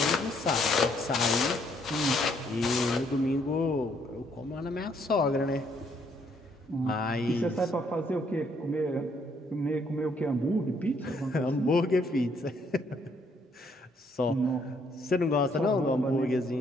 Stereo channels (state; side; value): normal; both; correlation 0.69